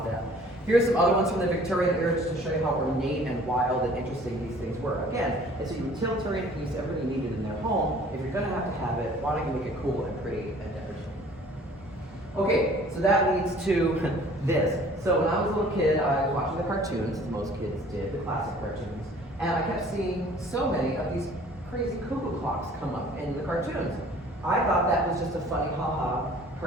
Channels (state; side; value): normal; both; correlation 0.52